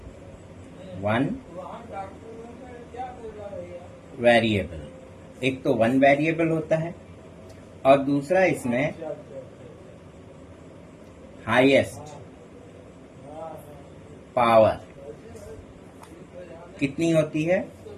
एक तो वन वेरिएबल होता है और दूसरा इसमें हाईएस्ट पावर कितनी होती है?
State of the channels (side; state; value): both; identical; correlation 1.00